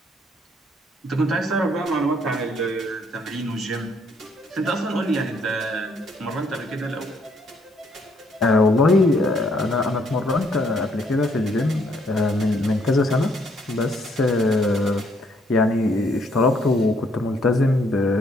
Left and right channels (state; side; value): normal; both; correlation 0.68